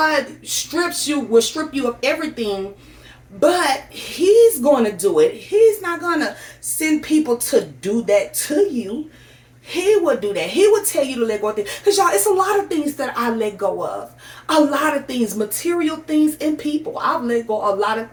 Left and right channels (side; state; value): both; identical; correlation 1.00